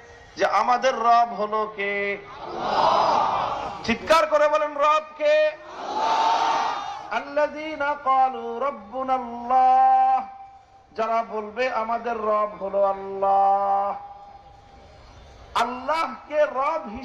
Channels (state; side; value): identical; both; correlation 1.00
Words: যে আমাদের রব হলো কে? আল্লাহ। চিৎকার করে বলেন, রব কে? আল্লাহ। আল্লাযীনা ক্বালু রাব্বুনাল্লাহ, যারা বলবে আমাদের রব হলো আল্লাহ, আল্লাহকে রব